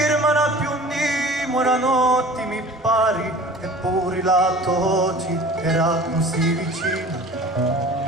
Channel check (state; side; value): normal; both; correlation 0.43